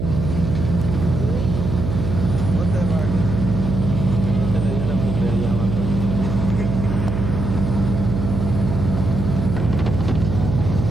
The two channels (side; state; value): right; noise; hum, 3 dB below the sound